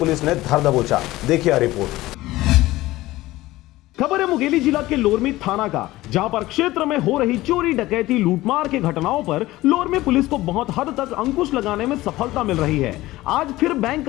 ने धर दबोचा। देखिए रिपोर्ट। खबर है मुंगेली जिला के लोरमी थाना का, जहां पर क्षेत्र में हो रही चोरी, डकैती, लूटमार के घटनाओं पर लोरमी पुलिस को बहुत हद तक अंकुश लगाने में सफलता मिल रही है। आज फिर बैंक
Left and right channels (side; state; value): right; quieter; 17.6 dB